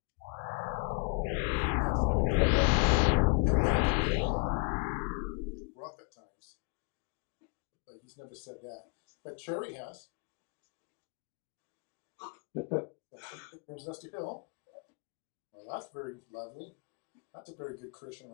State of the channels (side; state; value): right; quieter; 34.8 dB